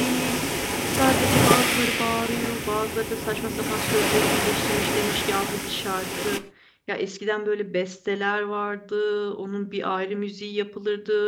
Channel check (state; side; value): identical; both; correlation 1.00